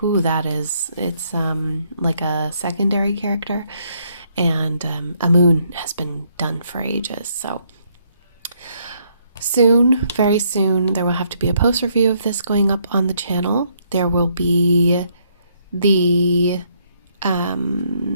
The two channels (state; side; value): inverted; both; correlation -0.72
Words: that is. It's like a secondary character, and a moon has been done for ages. So soon, very soon, there will have to be a post review of this going up on the channel. There will be the